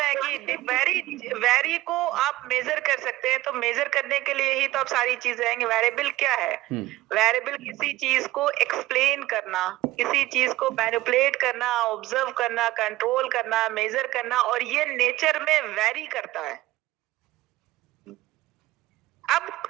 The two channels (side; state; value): left; quieter; 17.3 dB